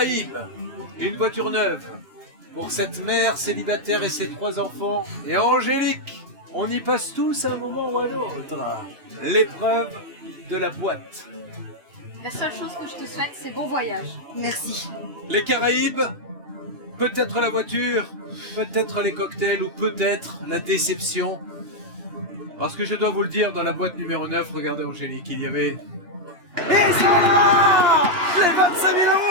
une voiture neuve pour cette mère célibataire et ses 3 enfants. Et Angélique, on y passe tous à un moment ou à un autre. L'épreuve de la boîte. La seule chose que je te souhaite, c'est bon voyage. Merci. Les Caraïbes, peut-être la voiture, peut-être les cocktails ou peut-être la déception. Parce que je dois vous le dire, dans la boîte numéro 9, regardez Angélique, il y avait... Ils sont là! Les 25 000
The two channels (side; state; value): left; late; 2.8 ms